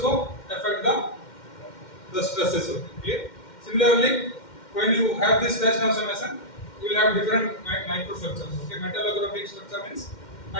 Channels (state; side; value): late; right; 2.1 ms